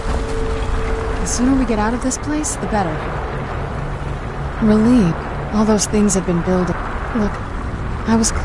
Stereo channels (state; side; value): identical; both; correlation 1.00